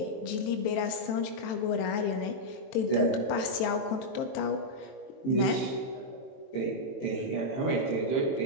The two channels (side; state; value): right; late; 23 ms